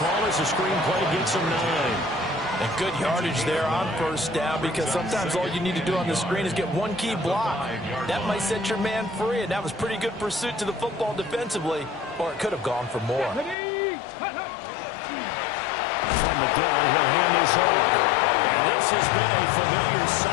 as the screenplay gets him 9. And good yardage there on 1st down because sometimes all you need to do on the screen is get one key block. That might set your man free, and that was pretty good pursuit to the football defensively, or it could have gone for more. From the gun, he'll hand this off. And this has been a familiar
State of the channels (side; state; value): right; drops out; at 13.6 s